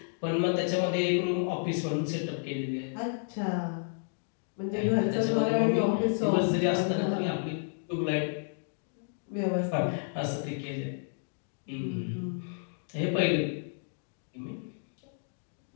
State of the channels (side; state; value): right; silent; digital silence